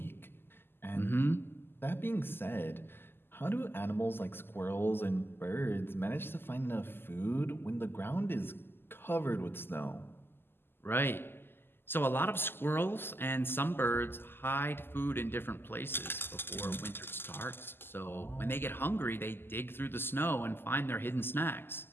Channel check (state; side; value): late; right; 0.11 ms